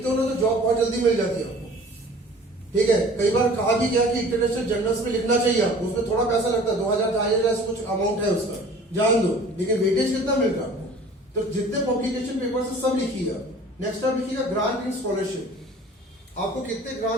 हो ना तो जॉब बहुत जल्दी मिल जाती है आपको। ठीक है, कई बार कहा भी गया कि इंटरनेशनल जर्नल्स में लिखना चाहिए आपको, उसमें थोड़ा पैसा लगता है, 2000-2500 कुछ अमाउंट है उसका, जान दो, लेकिन वेटेज कितना मिलता है आपको? तो जितने पब्लिकेशन पेपर से सब लिखिएगा। नेक्स्ट आप लिखिएगा ग्रांट एंड स्कॉलरशिप। आपको कितने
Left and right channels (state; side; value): normal; both; correlation 0.47